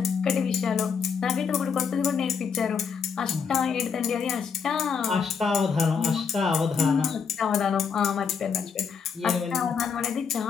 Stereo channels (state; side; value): quieter; right; 6.1 dB